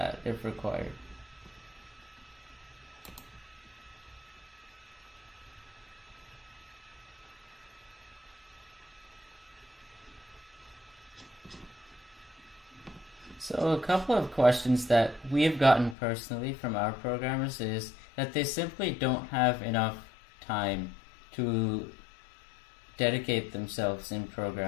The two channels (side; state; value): right; drops out; at 16.0 s